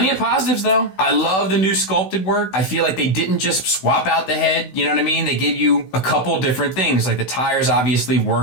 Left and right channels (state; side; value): late; right; 16 ms